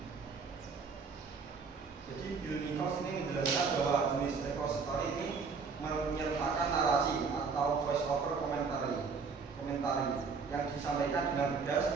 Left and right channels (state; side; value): quieter; left; 5.1 dB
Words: Jadi Bill Nichols ini menjelaskan bahwa jenis repository ini menyertakan narasi atau voice over komentari yang disampaikan dengan